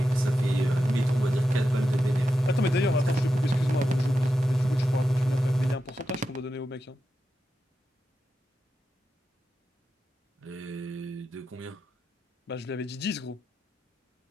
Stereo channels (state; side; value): normal; both; correlation 0.89